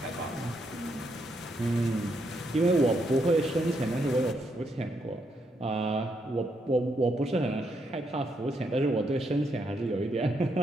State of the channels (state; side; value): normal; both; correlation 0.78